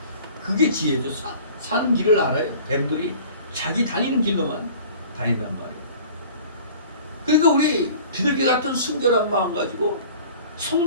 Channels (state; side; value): inverted; both; correlation -0.46